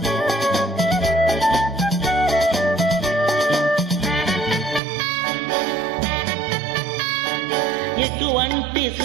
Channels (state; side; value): drops out; left; at 4.8 s